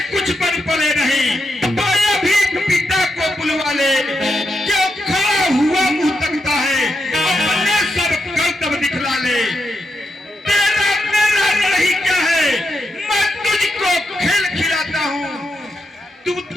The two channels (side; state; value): both; normal; correlation 0.84